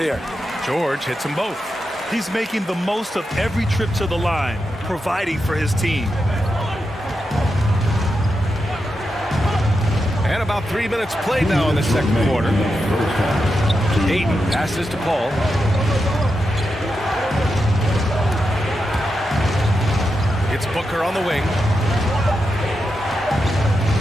George hits them both. He's making the most of every trip to the line, providing for his team. And about 3 minutes played now in the second quarter. Ayton passes to Paul. It's Booker on the wing.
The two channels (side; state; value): both; normal; correlation 0.87